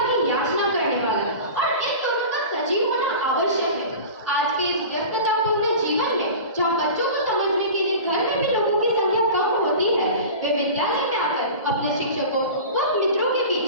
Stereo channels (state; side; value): inverted; both; correlation -0.35